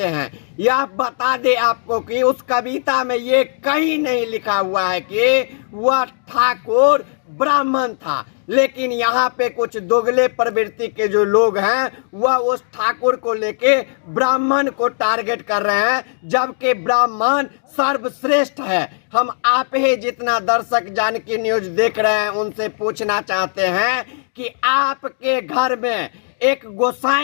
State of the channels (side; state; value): right; silent; digital silence